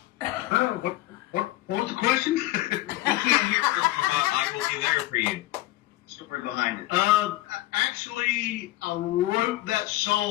What was the question? I will be there for you. Story behind it. Actually, I wrote that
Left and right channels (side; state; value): right; quieter; 17.1 dB